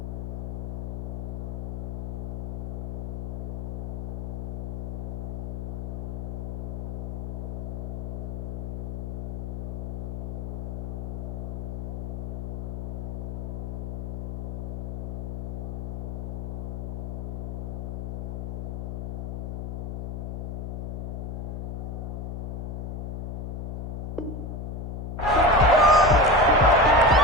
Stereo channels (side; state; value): left; noise; hum, 4 dB below the sound